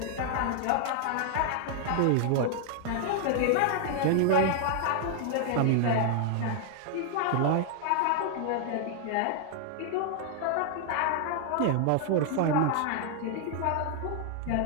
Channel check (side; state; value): both; different; correlation 0.00